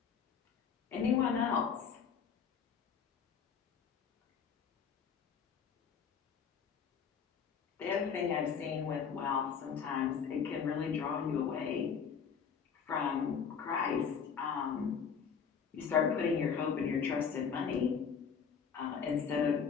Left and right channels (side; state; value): right; quieter; 6.7 dB